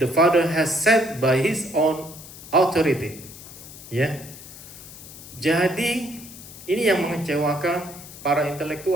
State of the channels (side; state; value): left; noise; hiss, 16 dB below the sound